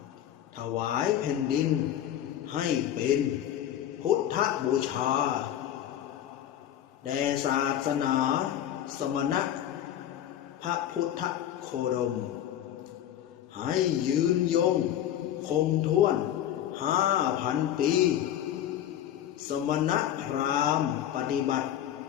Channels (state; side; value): quieter; right; 11.1 dB